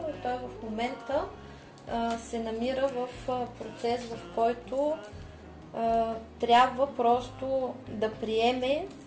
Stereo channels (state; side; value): identical; both; correlation 1.00